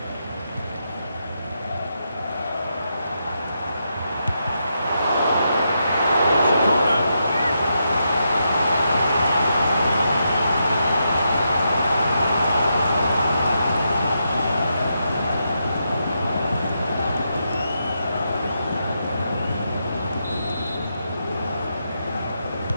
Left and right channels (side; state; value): both; inverted; correlation -0.83